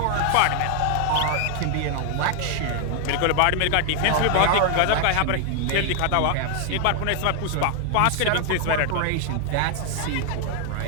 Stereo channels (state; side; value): different; both; correlation 0.00